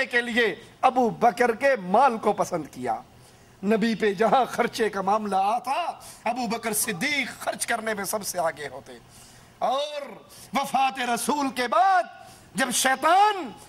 کے لیے ابو بکر کے مال کو پسند کیا۔ نبی پہ جہاں خرچے کا معاملہ آتا ابو بکر صدیق خرچ کرنے میں سب سے آگے ہوتے۔ اور وفات رسول کے بعد جب شیطان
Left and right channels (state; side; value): identical; both; correlation 1.00